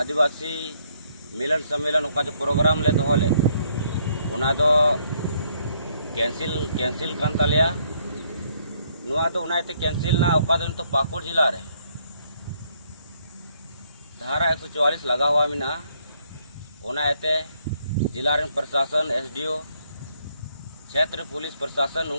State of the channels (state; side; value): inverted; both; correlation -0.70